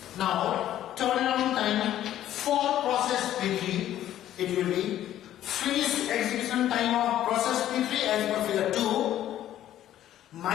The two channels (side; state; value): right; quieter; 12.2 dB